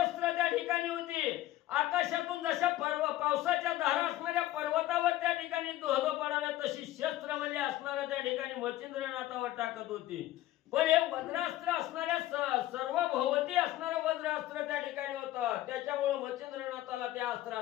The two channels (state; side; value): quieter; right; 14.9 dB